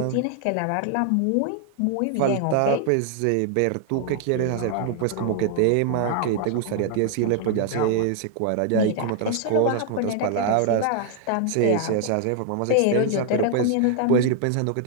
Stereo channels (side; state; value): both; different; correlation 0.00